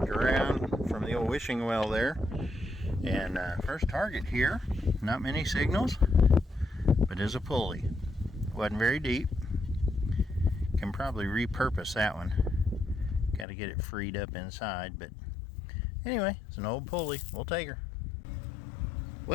around from the old wishing well there. And first target here, not many signals, but is a pulley. Wasn't very deep. Can probably repurpose that one. Got to get it freed up inside, but anyway, it's an old pulley. We'll take her.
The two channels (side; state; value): right; drops out; at 13.5 s